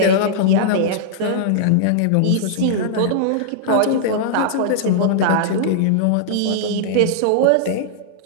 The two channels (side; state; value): both; different; correlation -0.02